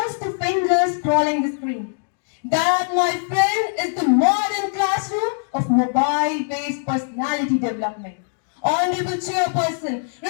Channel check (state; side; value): silent; right; digital silence